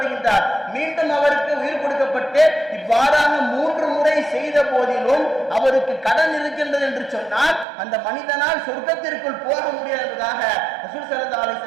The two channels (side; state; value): left; drops out; at 7.7 s